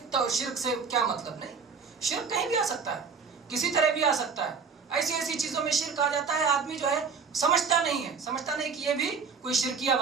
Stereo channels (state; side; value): quieter; left; 5.5 dB